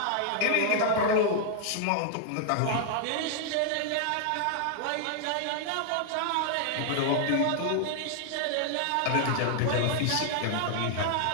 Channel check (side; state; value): both; different; correlation 0.00